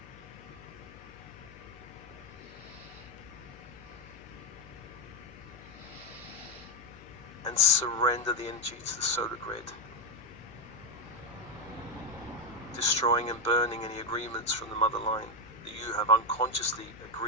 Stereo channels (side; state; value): left; noise; hum, 20 dB below the sound